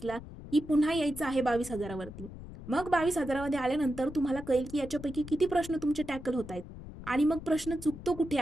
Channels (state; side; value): noise; left; rumble, 13 dB below the sound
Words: की पुन्हा यायचं आहे 22,000वरती. मग 22,000मध्ये आल्यानंतर तुम्हाला कळेल की याच्यापैकी किती प्रश्न तुमचे टॅकल होत आहेत आणि मग प्रश्न चुकतो कुठे